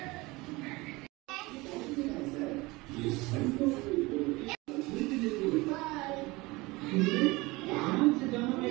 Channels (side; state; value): left; quieter; 22.6 dB